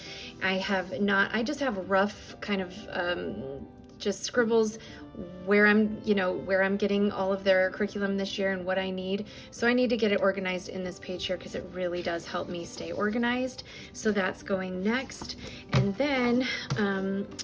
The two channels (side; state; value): both; identical; correlation 1.00